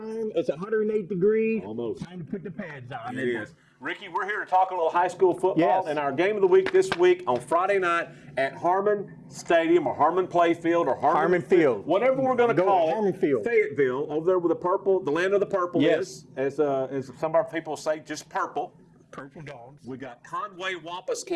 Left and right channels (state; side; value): identical; both; correlation 1.00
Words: It's 108 degrees. Almost. Time to put the pads on. It is. Ricky, we're here to talk a little high school football. Yes. And our game of the week this week on Friday night at Harmon Stadium or Harmon Playfield or Harmon Field. Whatever we're going to call Harmon Field. Fayetteville, over there with the purple, the land of the purple Yes. is, as some of our people say, just purple. Purple dogs. We got Conway Wampus